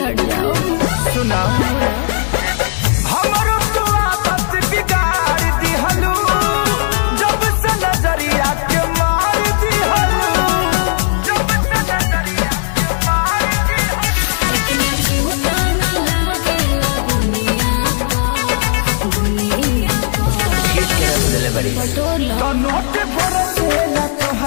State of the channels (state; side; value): silent; right; digital silence